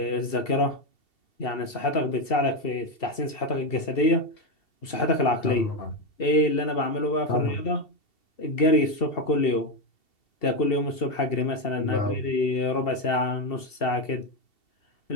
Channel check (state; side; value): late; right; 2.7 ms